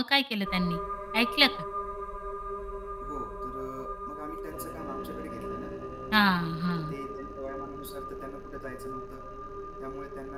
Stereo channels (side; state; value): both; identical; correlation 1.00